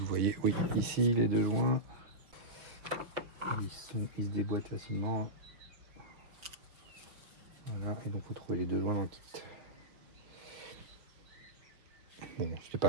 voyez. Oui, ici les deux joints. Ils se déboîtent facilement. Voilà, et donc il faut trouver les deux joints dans le kit. Bon, c'était pas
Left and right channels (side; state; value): left; late; 5.7 ms